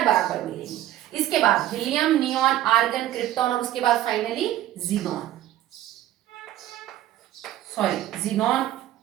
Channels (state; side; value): quieter; left; 13.4 dB